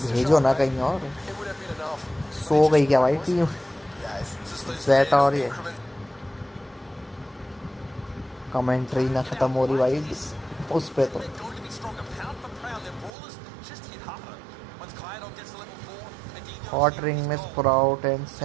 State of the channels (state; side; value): drops out; left; at 13.1 s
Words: भेजो ना कहीं और। सो गई क्या भाई टीम ज़ेटा? और ये कमेंट्री ना खत्म हो रही भाई उस पे तो। हॉट रिंग में sprout and